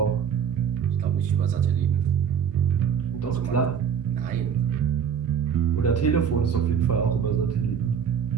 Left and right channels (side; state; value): left; quieter; 7.6 dB